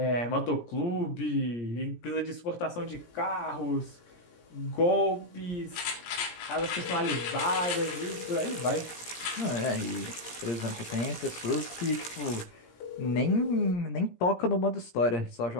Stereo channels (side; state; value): right; late; 17 ms